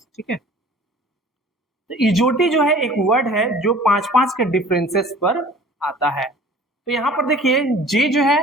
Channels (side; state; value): both; normal; correlation 0.47